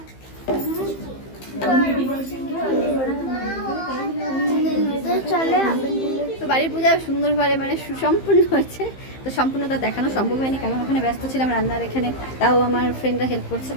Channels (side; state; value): right; late; 15 ms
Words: তো বাড়ির পূজা সুন্দরভাবে মানে সুসম্পূর্ণ হয়েছে। তো সম্পূর্ণতা দেখানো সম্ভব হয়নি, কারণ ওখানে ব্যস্ত ছিলাম রান্নার। এখানে তাও আমার ফ্রেন্ডরা হেল্প করছে,